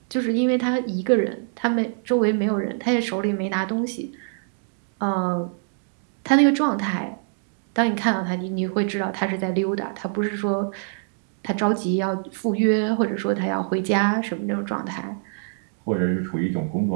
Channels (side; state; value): left; silent; 62 dB below the other